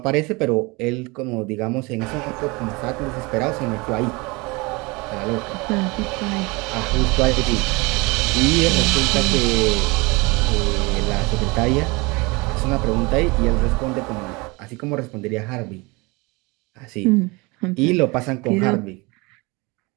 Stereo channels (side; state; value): left; quieter; 25.8 dB